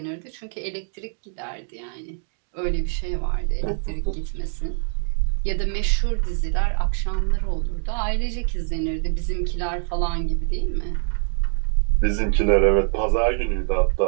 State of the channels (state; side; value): silent; left; digital silence